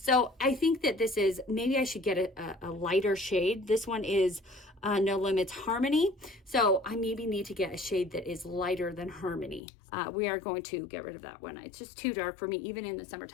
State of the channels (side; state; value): right; drops out; at 9.6 s